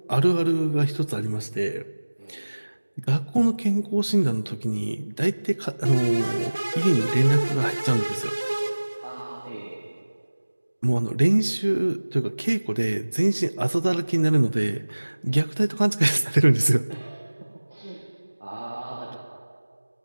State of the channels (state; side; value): inverted; both; correlation -1.00